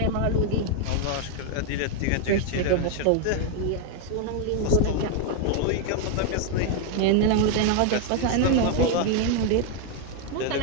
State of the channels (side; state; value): both; different; correlation 0.01